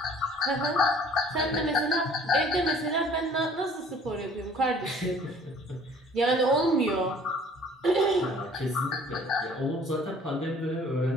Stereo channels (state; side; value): normal; both; correlation 0.53